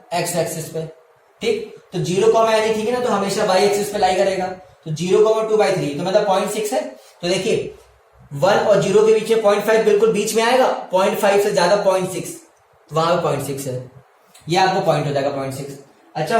x एक्सिस पे। ठीक, तो 0, एनीथिंग है ना, तो हमेशा y एक्सिस पे लाई करेगा। तो 0,2/3 तो मतलब 0.6 है। तो देखिए 1 और 0 के बीच में 0.5 बिल्कुल बीच में आएगा, 0.5 से ज्यादा 0.6, तो वहां पे 0.6 है, ये आपको पॉइंट हो जाएगा 0.6। अच्छा,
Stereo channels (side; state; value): both; identical; correlation 1.00